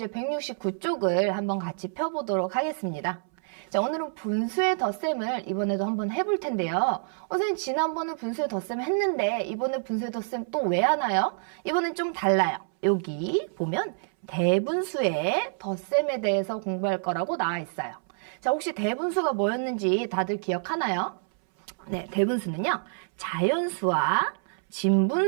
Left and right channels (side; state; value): left; silent; 60 dB below the other